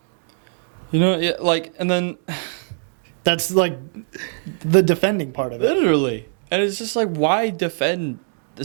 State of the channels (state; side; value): silent; left; digital silence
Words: You know, yeah, like, and then... That's like the defending part of it. Literally. And it's just like, why defend the